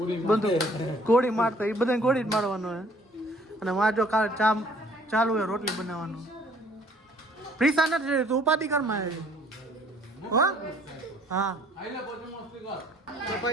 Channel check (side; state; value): both; normal; correlation 0.59